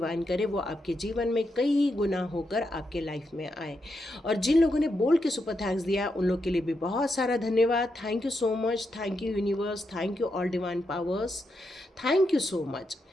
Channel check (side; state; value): both; normal; correlation 0.83